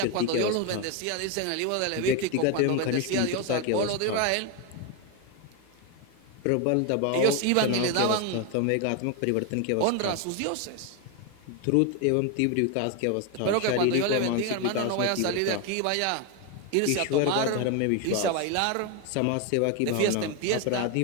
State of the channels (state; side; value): different; both; correlation 0.02